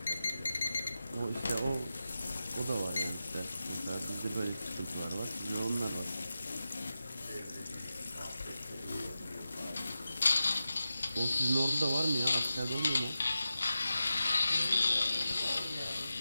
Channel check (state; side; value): inverted; both; correlation -0.92